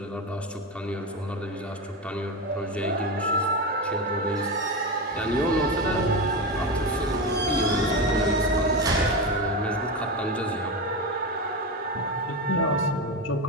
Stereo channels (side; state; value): both; normal; correlation 0.17